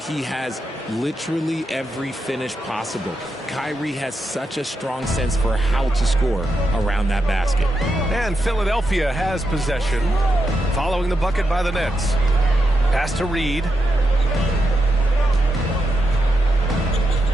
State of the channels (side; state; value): both; normal; correlation 0.85